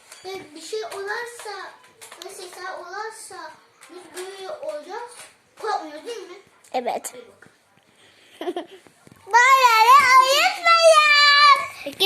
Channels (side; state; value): both; identical; correlation 1.00